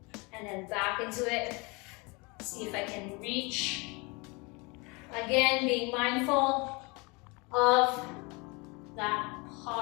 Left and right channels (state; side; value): quieter; right; 28.0 dB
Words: and then back into it. See if I can reach. Again, being mindful of that